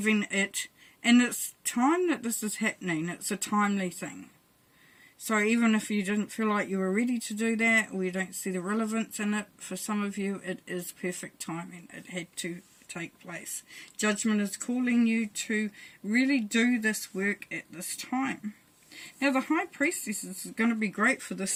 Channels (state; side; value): identical; both; correlation 1.00